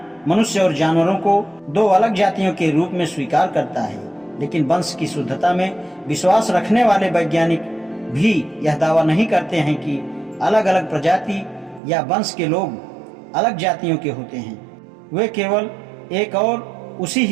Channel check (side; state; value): left; drops out; at 11.8 s